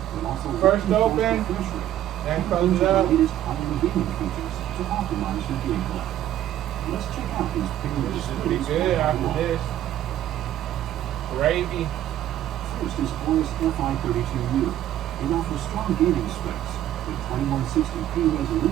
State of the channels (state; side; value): quieter; left; 12.3 dB